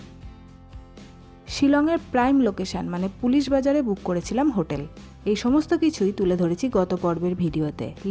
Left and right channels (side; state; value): both; identical; correlation 1.00